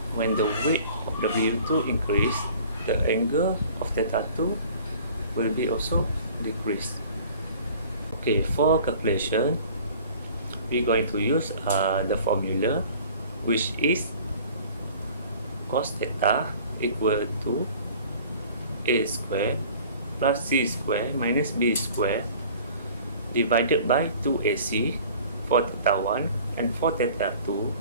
when the weight of W2 increase, the angle of theta 2 will be also decreased. Okay, for calculation, we're going to use the formula, which is cos theta equal to a square plus c square minus b square divided by 2ac for theta 1, and for theta 2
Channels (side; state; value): both; inverted; correlation -0.48